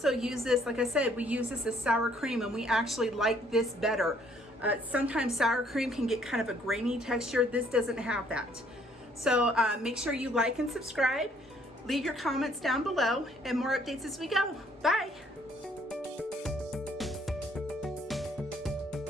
use this, like I said, we use this as sour cream, and we actually like this better. Sometimes sour cream can get kind of a grainy texture. This doesn't have that. So make sure you like and subscribe. Leave your comments down below, and more updates as we go. Bye.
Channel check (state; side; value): normal; both; correlation 0.64